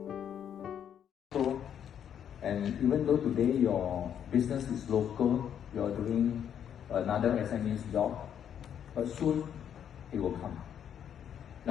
And even though today your business is local, you are doing another SME's job, but soon it will come.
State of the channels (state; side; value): quieter; right; 9.0 dB